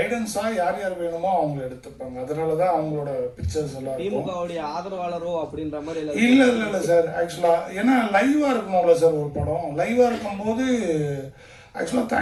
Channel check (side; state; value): both; identical; correlation 1.00